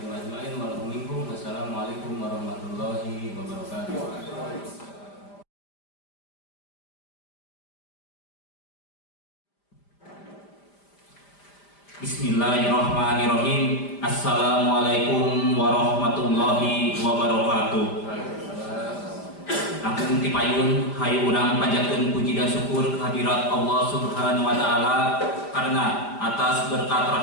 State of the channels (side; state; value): right; late; 5.0 ms